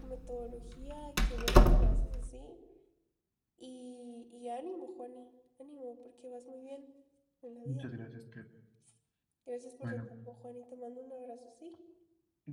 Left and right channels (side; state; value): both; identical; correlation 1.00